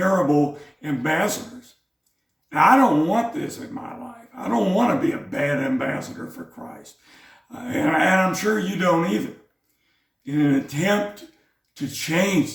ambassadors. Now, I don't want this in my life. I don't want to be a bad ambassador for Christ. And I'm sure you don't either. In an attempt to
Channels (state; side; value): identical; both; correlation 1.00